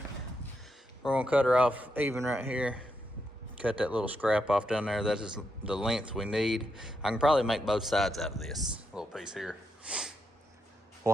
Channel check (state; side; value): normal; both; correlation 0.82